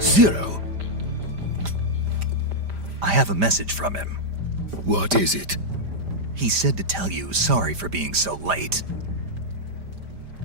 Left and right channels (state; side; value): late; left; 5.0 ms